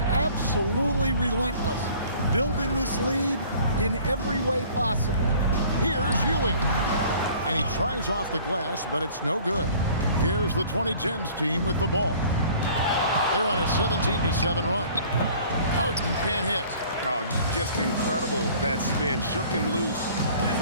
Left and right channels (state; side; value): inverted; both; correlation -0.51